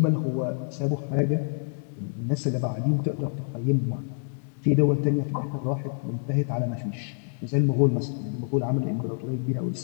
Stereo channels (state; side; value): silent; right; digital silence